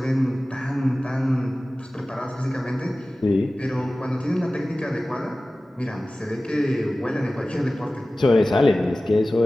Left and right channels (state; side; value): normal; both; correlation 0.97